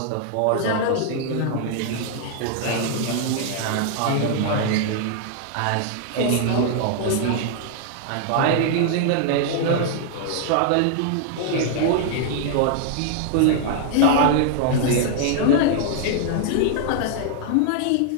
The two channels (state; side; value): different; both; correlation -0.01